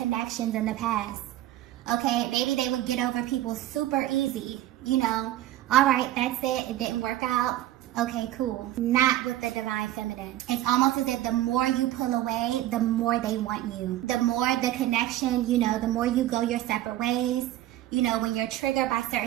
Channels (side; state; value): left; quieter; 14.2 dB